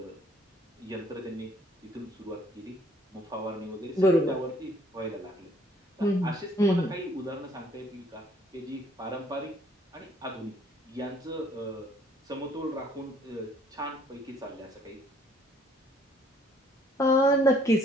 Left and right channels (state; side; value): normal; both; correlation 0.62